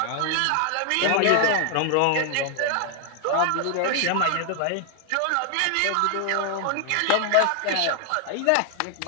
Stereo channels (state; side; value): different; both; correlation 0.00